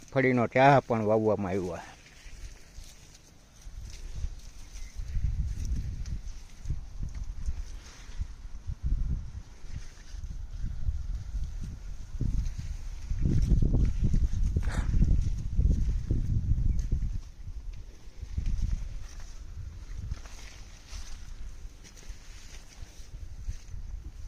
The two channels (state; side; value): identical; both; correlation 1.00